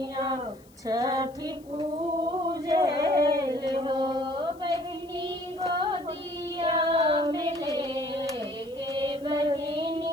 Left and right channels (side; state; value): left; noise; hiss, 28 dB below the sound